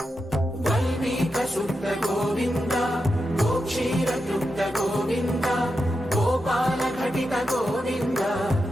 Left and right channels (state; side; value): normal; both; correlation 0.88